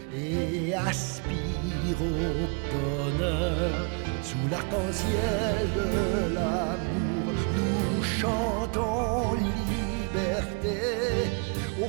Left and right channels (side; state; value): left; quieter; 35.1 dB